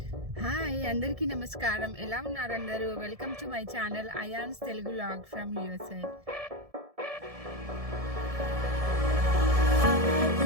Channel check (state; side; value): late; left; 1.7 ms